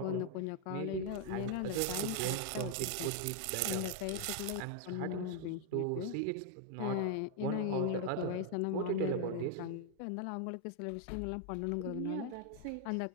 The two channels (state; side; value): different; both; correlation 0.00